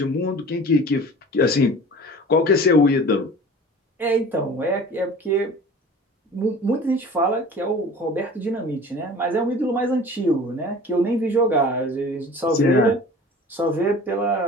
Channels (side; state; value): both; normal; correlation 0.42